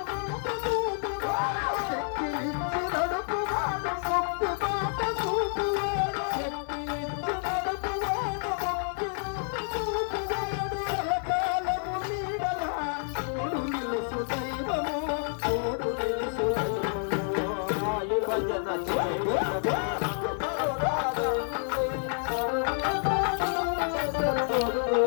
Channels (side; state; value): right; silent; 59 dB below the other